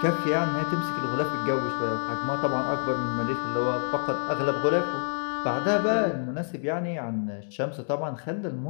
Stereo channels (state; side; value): silent; right; digital silence